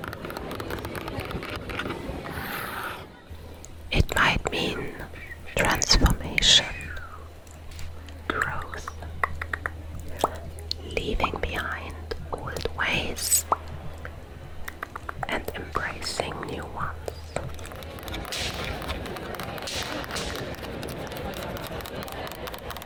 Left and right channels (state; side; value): identical; both; correlation 1.00